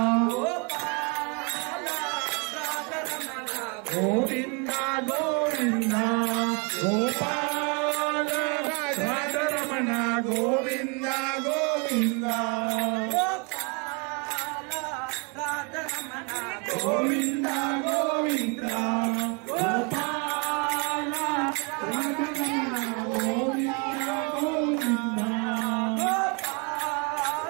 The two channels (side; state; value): left; quieter; 33.8 dB